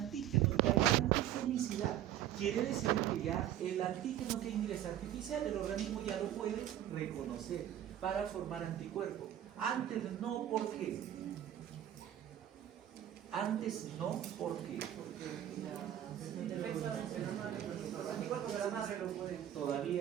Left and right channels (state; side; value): quieter; left; 11.6 dB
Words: ya hay antigenicidad. Quiere decir que ya el antígeno que ingresa artificial, el organismo ya lo puede reconocer para formar anticuerpos. Antes no, ¿por qué? Antes no, ¿por qué? Porque Los anticuerpos de la madre lo pueden